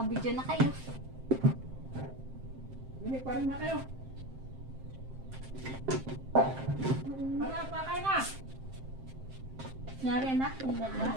na kayo. Hindi pa rin na kayo. Wala pa kayo na. Nyari na, yung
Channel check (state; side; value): late; left; 7.6 ms